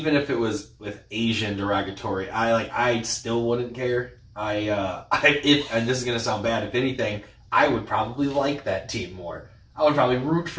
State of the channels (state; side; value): identical; both; correlation 1.00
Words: if it was with Asian derogatory, I still wouldn't care. And this is gonna sound bad, if anything, I would probably like that team more. I would probably root